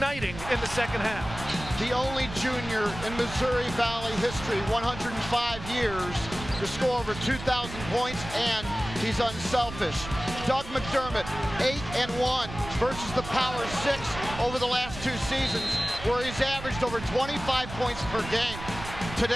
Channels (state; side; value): noise; right; rumble, 11 dB below the sound